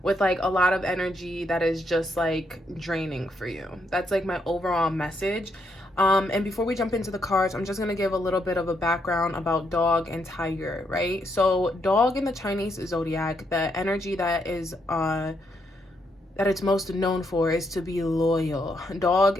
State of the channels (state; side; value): normal; both; correlation 0.77